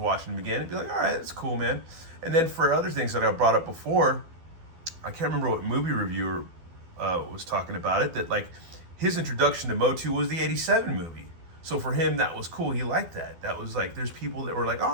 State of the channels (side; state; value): left; late; 12 ms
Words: them again and be like, all right, that's cool, man. And then for other things that I brought up before, I can't remember what movie reviewer was talking about it, that like his introduction to Motu was the 87 movie. So for him, that was cool. He liked that. That was like, there's people that were like,